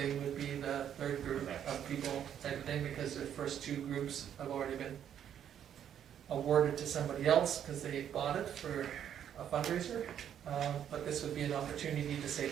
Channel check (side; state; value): left; quieter; 9.5 dB